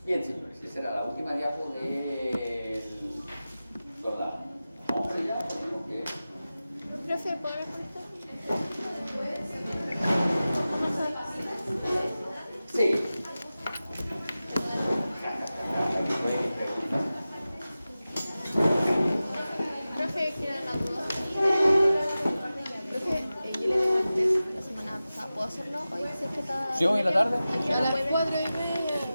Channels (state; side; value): inverted; both; correlation -0.95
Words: Bien, señores, esa era la última diapo del programa. Vamos allá, tenemos que... Profe, ¿puedo ver esto? Sí. Profe, quiero la duda. Profe, yo le debo el test la semana pasada. ¿Puedo hacerlo hoy? Si es que está... ¿Sí, hoy en la tarde? A las